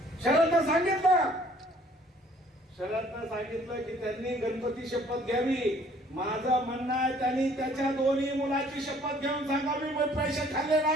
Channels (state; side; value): normal; both; correlation 0.58